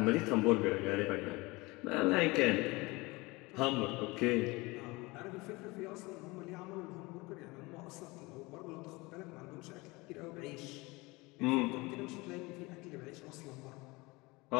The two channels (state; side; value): quieter; right; 23.6 dB